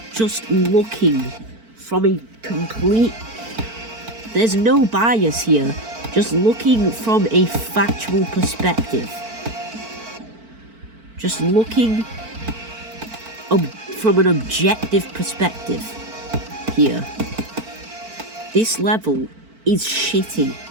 Just looking from a complete... There's no bias here. Just looking from a factual perspective. Just looking from an objective perspective here. This level is shitty.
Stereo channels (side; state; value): left; late; 4.5 ms